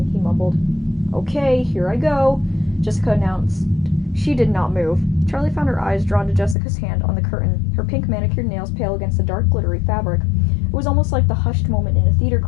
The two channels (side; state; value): right; drops out; at 6.6 s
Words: he mumbled. Okay, here I go, Jessica announced. She did not move. Charlie found her eyes drawn to Jessica's hand on the curtain, her pink manicured nails pale against the dark, glittery fabric. It was almost like the hushed moment in a theater